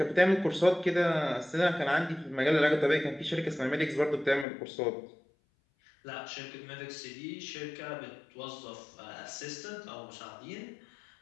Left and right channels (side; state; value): right; drops out; at 4.5 s